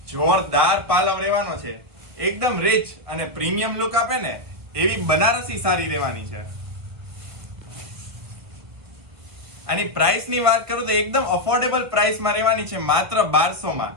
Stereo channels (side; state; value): left; late; 1.3 ms